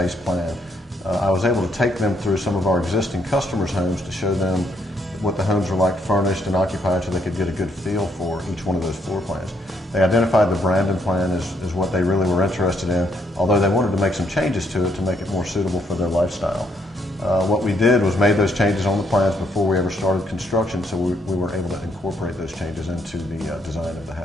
plan. I was able to take them through some of our existing customers' homes to show them what the homes were like furnished and occupied so they could get a good feel for each one of those floor plans. They identified the Brandon plan as what they really were interested in, although they wanted to make some changes to it to make it more suitable for their lifestyle. What we did was made those changes on the plans before we ever started construction, so we were able to incorporate those changes into the design of the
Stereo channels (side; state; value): both; normal; correlation 0.72